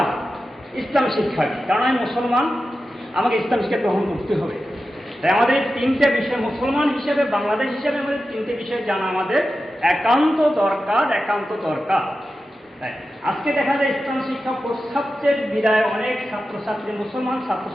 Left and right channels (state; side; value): normal; both; correlation 0.92